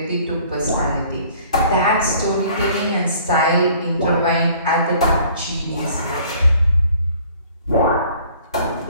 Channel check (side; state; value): both; inverted; correlation -0.55